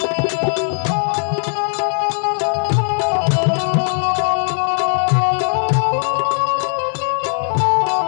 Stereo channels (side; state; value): right; silent; digital silence